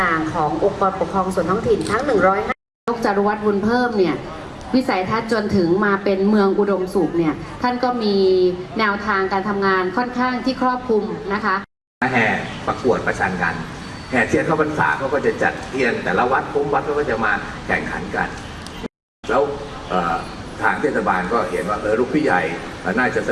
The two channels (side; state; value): both; identical; correlation 1.00